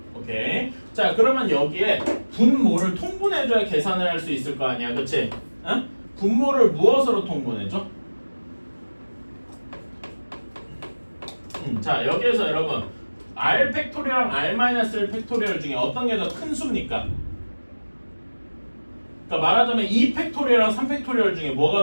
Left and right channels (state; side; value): inverted; both; correlation -1.00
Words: 오케이. 자, 그러면 여기에 분모를 통분해줘야 계산을 할 수 있을 거 아니야. 그치? 응? 분모를 무엇으로 통분해줘? 자, 여기에서 여러분 r 팩토리얼랑 r-1 팩토리얼 중에 어떤 게 더 큰 수입니까? 그러니까 말하자면 2 팩토리얼랑 3 팩토리얼 중에 뭐가